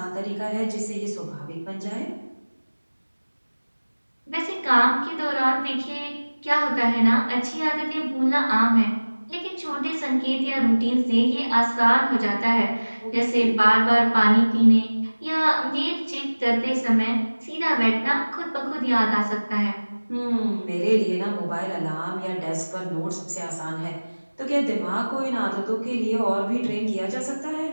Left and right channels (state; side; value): inverted; both; correlation -1.00